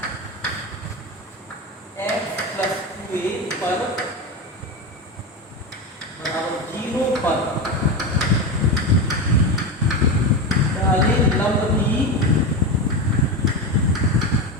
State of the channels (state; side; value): normal; both; correlation 0.18